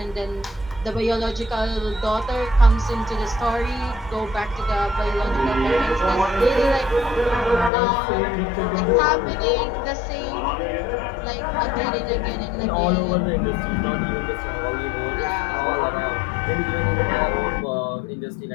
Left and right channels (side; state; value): right; drops out; at 7.7 s